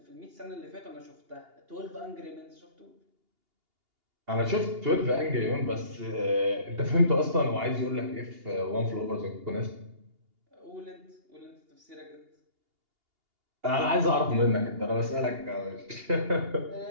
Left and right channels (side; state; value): left; late; 2.8 ms